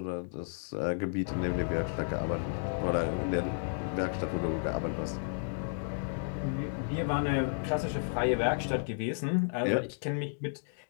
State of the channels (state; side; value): silent; right; digital silence